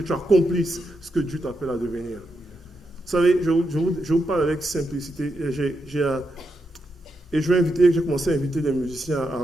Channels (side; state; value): both; normal; correlation 0.84